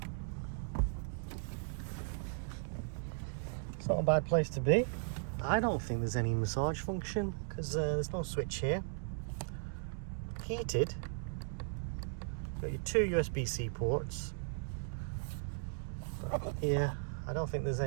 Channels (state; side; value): silent; left; digital silence